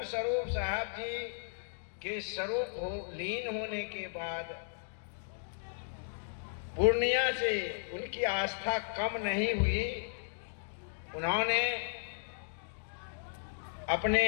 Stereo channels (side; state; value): right; silent; digital silence